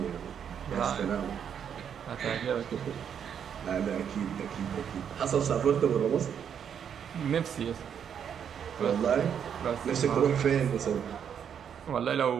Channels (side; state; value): left; quieter; 8.1 dB